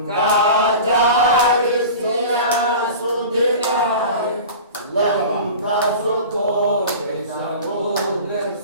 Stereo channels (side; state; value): both; inverted; correlation -0.36